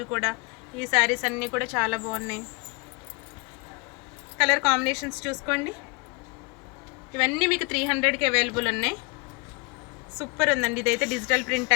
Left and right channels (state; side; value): quieter; right; 30.3 dB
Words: కూడా. ఈ శారీస్ అన్నీ కూడా చాలా బాగున్నాయి. కలర్ కాంబినేషన్స్ చూసుకోండి. ఇవన్నీ మీకు 300కి అవైలబుల్ ఉన్నాయి. సూపర్ ఉందండి. ఇదైతే డిజిటల్ ప్రింట్